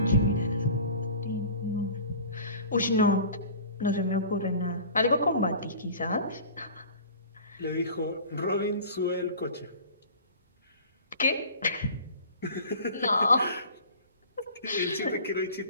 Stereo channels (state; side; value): inverted; both; correlation -0.42